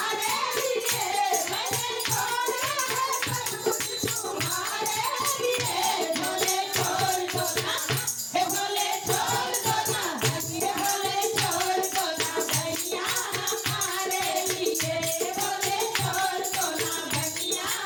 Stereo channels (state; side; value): identical; both; correlation 1.00